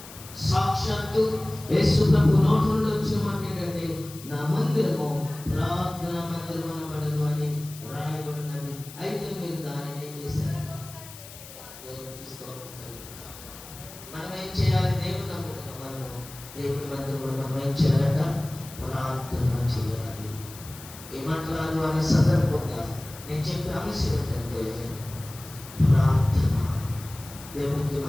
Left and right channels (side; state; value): left; noise; hiss, 16 dB below the sound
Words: సాక్షాత్తు యేసు ప్రభు నోటి నుండి వచ్చిన మాట ఏంటంటే నా మందిరము ప్రార్థన మందిరం అనబడను అని రాయబడినది. అయితే మీరు దానిని ఏం చేశారు? దేవునికి స్తోత్రం కలుగునుగాక. మనం ఏం చేయాలి? దేవుని నమ్ముకున్నాం. మనం దేవుని మందిరంలో మనం ఏం చేయాలట? ప్రార్థన చేయాలి. ఏమంటారు అనే సందర్భంగా నేను చెప్పే అంశం ఏంటంటే ప్రార్థన. దేవునికి